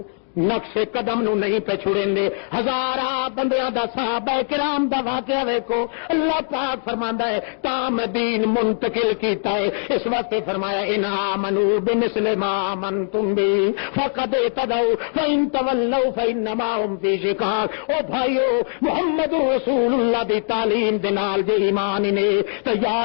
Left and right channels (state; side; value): silent; right; digital silence